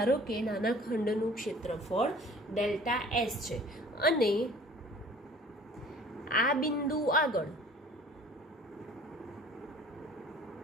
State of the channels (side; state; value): both; normal; correlation 0.49